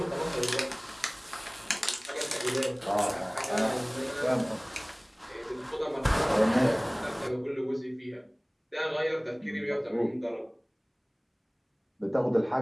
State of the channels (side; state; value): both; identical; correlation 1.00